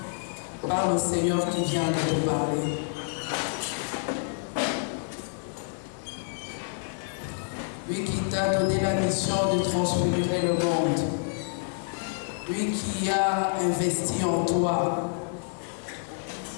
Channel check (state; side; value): silent; right; 59 dB below the other